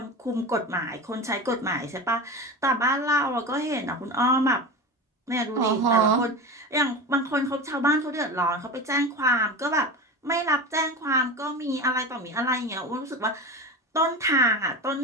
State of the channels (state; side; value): normal; both; correlation 0.27